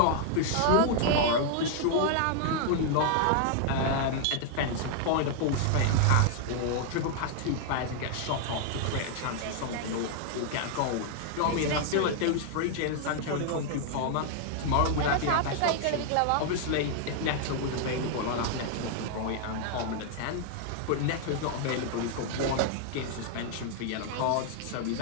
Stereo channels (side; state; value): both; different; correlation -0.01